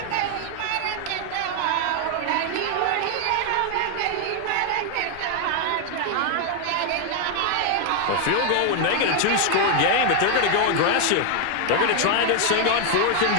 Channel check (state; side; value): different; both; correlation 0.00